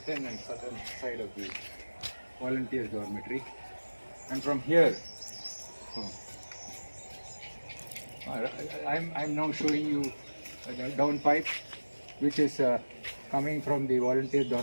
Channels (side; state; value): both; inverted; correlation -1.00